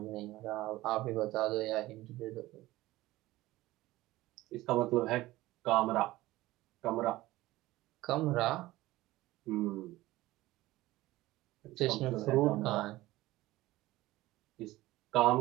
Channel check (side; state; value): left; quieter; 17.7 dB